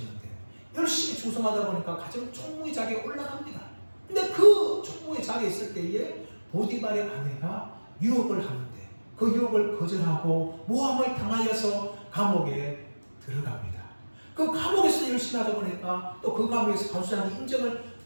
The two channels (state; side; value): inverted; both; correlation -1.00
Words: 열심히 충성하다 보니까 가정 총무의 자리에 올라갑니다. 근데 그 총무의 자리에 있을 때에 보디발의 아내가 유혹을 하는데 그 유혹을 거절하고 모함을 당하여서 감옥에 들어갑니다. 그 감옥에서 열심히 하다 보니까 또 그 감옥에서 간수장의 인정을